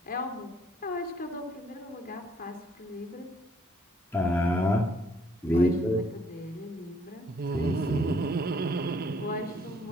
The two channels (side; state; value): both; normal; correlation 0.65